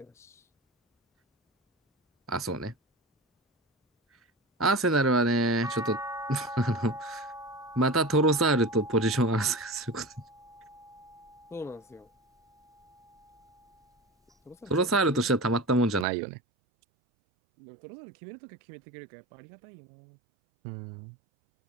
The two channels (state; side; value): drops out; left; at 16.1 s